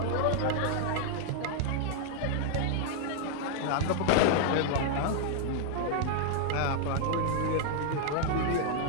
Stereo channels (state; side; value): different; both; correlation 0.00